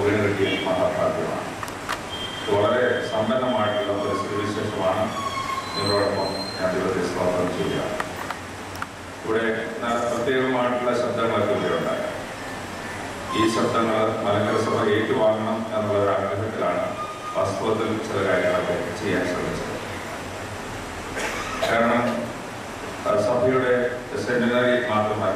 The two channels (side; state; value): both; identical; correlation 1.00